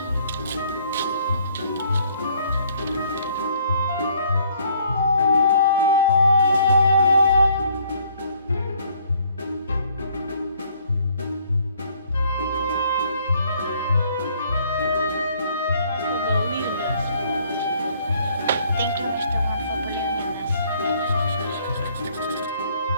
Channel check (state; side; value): inverted; both; correlation -0.63